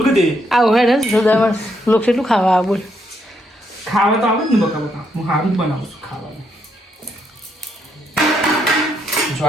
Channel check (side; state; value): both; normal; correlation 0.76